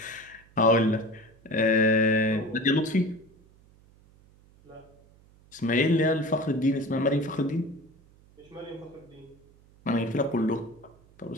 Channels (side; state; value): right; noise; hum, 28 dB below the sound